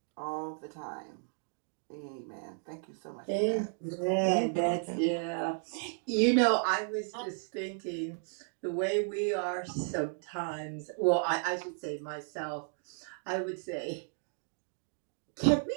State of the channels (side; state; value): left; silent; 55 dB below the other